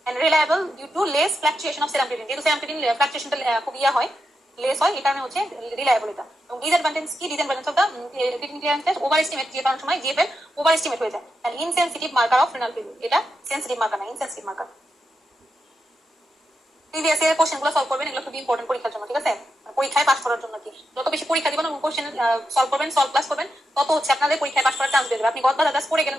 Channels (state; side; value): normal; both; correlation 0.86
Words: and reliable due to less fluctuation of serum creatinine. যেহেতু serum creatinine ফ্লাকচুয়েশনটা খুব হয়, less হয়, এই কারণে হচ্ছে রিলায়েবল এটা। এবং ডিসঅ্যাডভান্টেজ কি, disadvantage of the creatinine clearance test, overestimate, যে কারণ সময় জিএফএল ওভার এস্টিমেট হয়ে যায়, and insensitive marker of renal failure. এটা সেনসিটিভ মার্কার না, ইনসেনসিটিভ মার্কার। প্রিভিয়াস ইয়ার কোশ্চেনগুলো সলভ করবেন, এগুলো খুব ইম্পর্টেন্ট পরীক্ষার জন্য, ঠিক আছে। পরীক্ষায় পাস করার জন্য কি, যত বেশি পরীক্ষা দিবেন কোশ্চেন সলভ করবেন, সলভ ক্লাস করবেন, তত হচ্ছে আপনাদের পরীক্ষায় পাস করার চান্স বেড়ে যাবে। আপনি গদ বাজার পড়ে